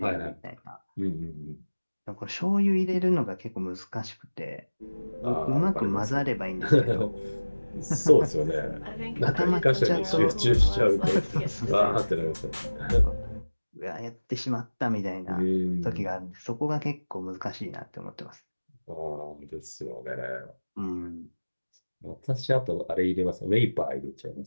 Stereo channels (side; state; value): both; inverted; correlation -1.00